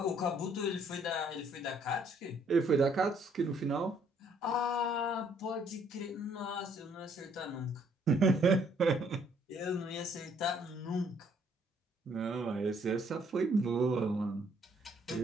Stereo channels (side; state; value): both; normal; correlation 0.65